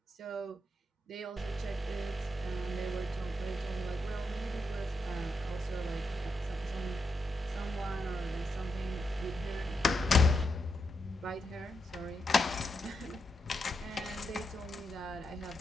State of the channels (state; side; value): normal; both; correlation 0.83